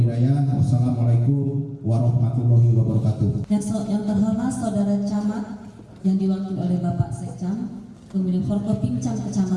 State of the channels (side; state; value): both; identical; correlation 1.00